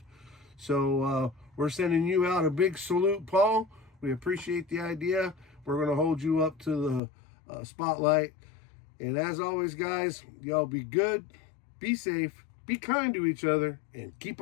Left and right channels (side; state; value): right; drops out; at 7.0 s